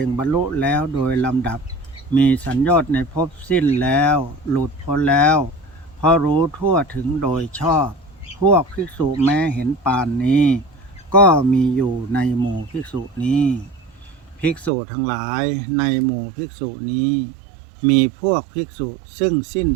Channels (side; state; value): left; drops out; at 14.7 s